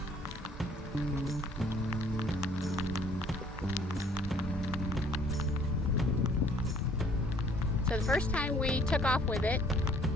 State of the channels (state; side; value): normal; both; correlation 0.59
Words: So the first time we took off with it,